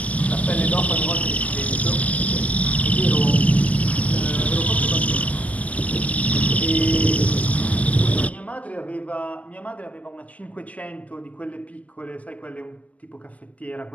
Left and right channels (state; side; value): late; right; 0.073 ms